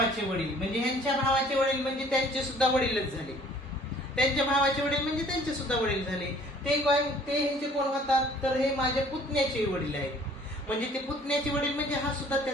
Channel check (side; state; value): both; normal; correlation 0.55